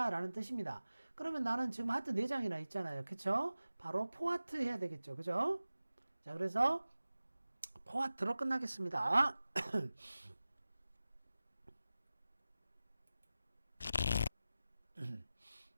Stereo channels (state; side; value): inverted; both; correlation -0.96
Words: 라는 뜻입니다. 그러면 나는 지금 하트 4장이나 있잖아요. 그쵸? 바로 4 하트 해야 되겠죠. 그죠? 자, 그래서 4 하트로 끝나겠습니다.